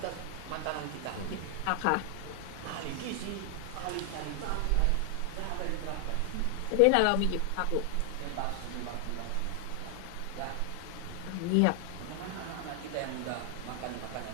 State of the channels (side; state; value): both; different; correlation 0.00